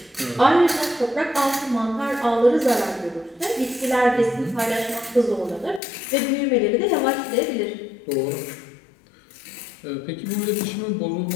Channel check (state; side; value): drops out; right; at 5.8 s